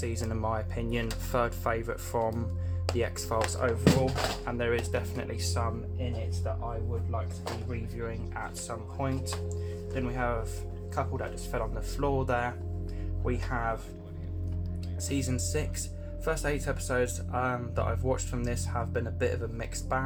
in my opinion, 3rd favourite from the X-Files overall, and there is definitely some in it that I would like to be reviewing at some point. Then we have a couple that just fell on the floor there. we have season 6. First 8 episodes that I've watched from this have been a bit of a mixed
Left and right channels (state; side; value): identical; both; correlation 1.00